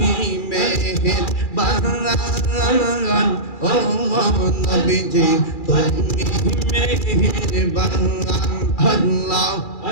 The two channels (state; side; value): late; right; 2.4 ms